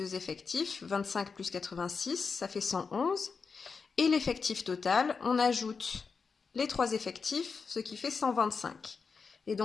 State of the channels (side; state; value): right; quieter; 5.2 dB